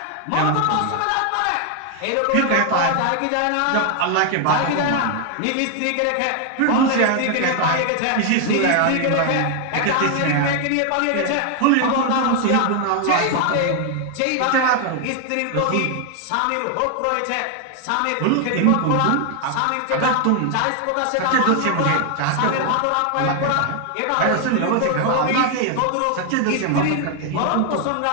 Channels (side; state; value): both; different; correlation 0.00